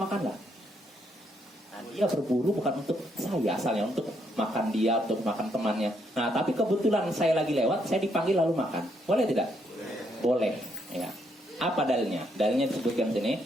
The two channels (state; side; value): normal; both; correlation 0.74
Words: Nah, dia berburu bukan untuk saya asalnya, untuk makan dia, untuk makan temannya. Nah, tapi kebetulan saya lagi lewat, saya dipanggil lalu makan. Boleh tidak? Boleh. Ya. Apa dalilnya? Dalilnya disebutkan sini